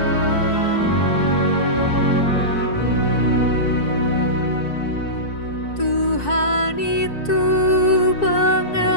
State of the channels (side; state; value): right; late; 4.6 ms